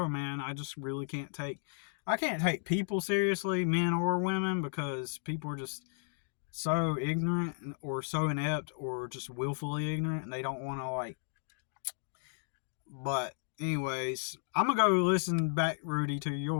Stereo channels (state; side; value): silent; right; digital silence